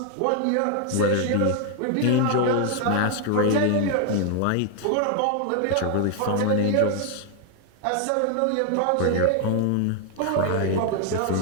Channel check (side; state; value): both; different; correlation 0.00